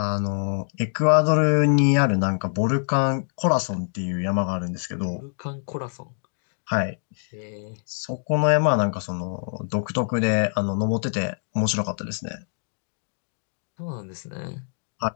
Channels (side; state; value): right; silent; 62 dB below the other